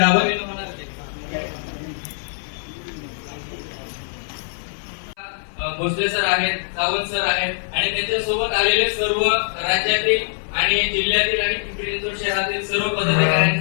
भोसले सर आहेत, सावंत सर आहेत आणि त्यांच्या सोबत आलेले सर्व राज्यातील आणि जिल्ह्यातील आणि पिंपरी चिंचवड शहरातील सर्व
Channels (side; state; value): right; silent; 59 dB below the other